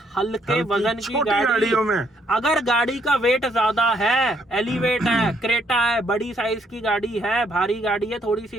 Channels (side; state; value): both; normal; correlation 0.71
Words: हल्के वजन की छोटी गाड़ी। गाड़ियों में अगर गाड़ी का वेट ज्यादा है, एलिवेट है, क्रेटा है, बड़ी साइज की गाड़ी है, भारी गाड़ी है थोड़ी